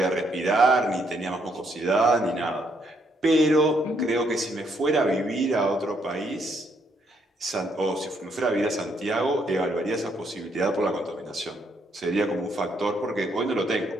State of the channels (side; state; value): both; normal; correlation 0.73